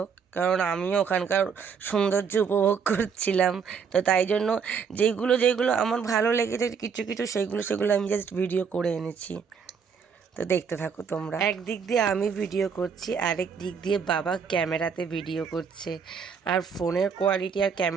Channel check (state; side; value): quieter; left; 6.3 dB